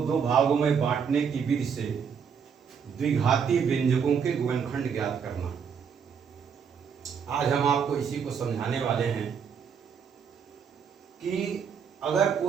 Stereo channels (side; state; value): left; quieter; 6.8 dB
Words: दो भागों में बांटने की विधि से द्विघाती व्यंजकों के गुणनखंड ज्ञात करना। आज हम आपको इसी को समझाने वाले हैं कि अगर